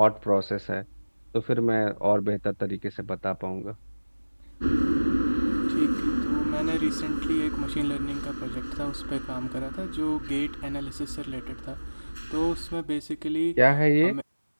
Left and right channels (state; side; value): inverted; both; correlation -1.00